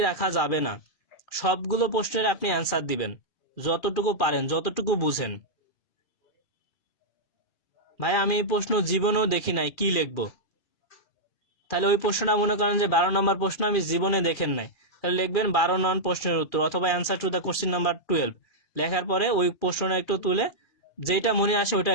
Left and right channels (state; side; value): late; right; 2.4 ms